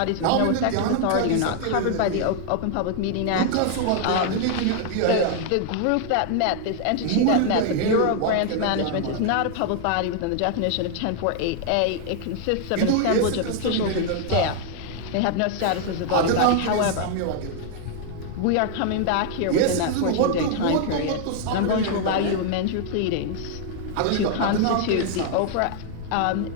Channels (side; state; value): both; different; correlation 0.00